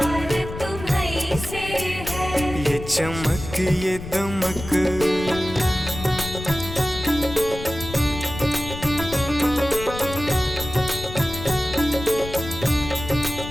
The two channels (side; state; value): left; noise; rumble, 10 dB below the sound